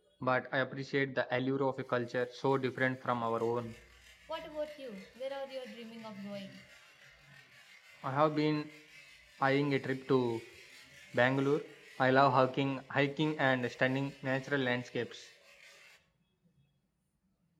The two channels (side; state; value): both; identical; correlation 1.00